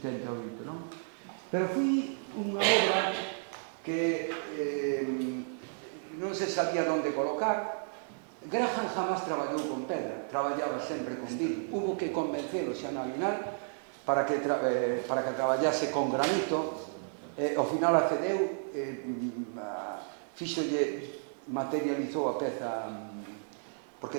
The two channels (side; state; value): left; silent; 56 dB below the other